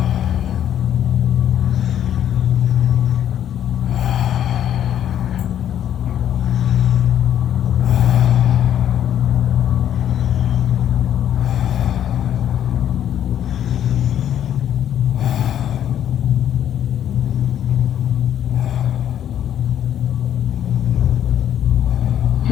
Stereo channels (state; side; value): quieter; right; 10.3 dB